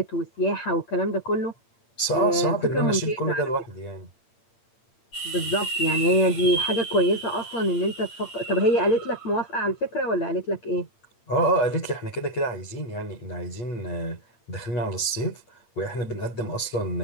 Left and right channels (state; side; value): late; right; 8.8 ms